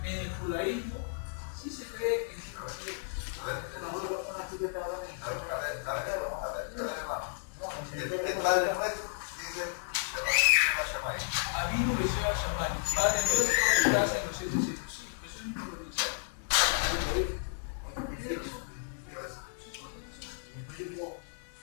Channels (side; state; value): right; silent; 56 dB below the other